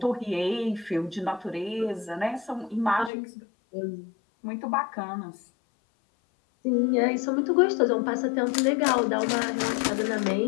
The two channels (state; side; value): drops out; right; at 3.1 s